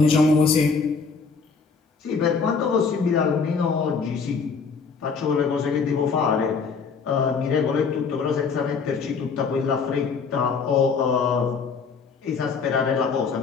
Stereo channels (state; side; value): quieter; right; 5.2 dB